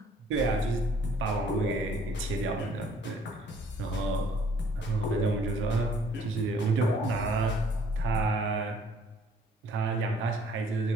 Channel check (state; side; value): normal; both; correlation 0.59